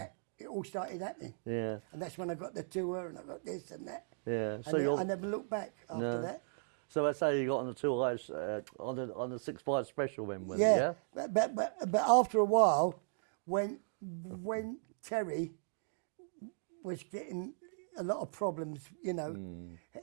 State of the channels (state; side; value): silent; left; digital silence